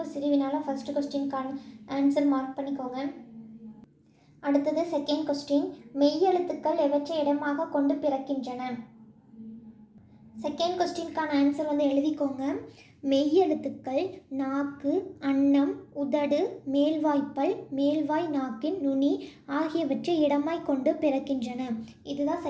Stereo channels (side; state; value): both; identical; correlation 1.00